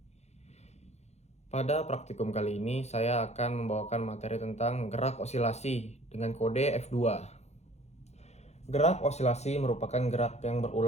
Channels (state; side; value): late; right; 0.32 ms